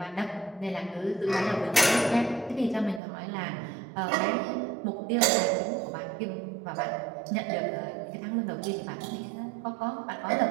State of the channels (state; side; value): drops out; left; at 3.0 s